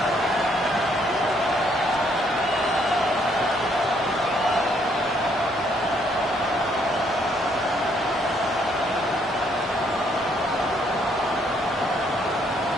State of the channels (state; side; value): normal; both; correlation 0.69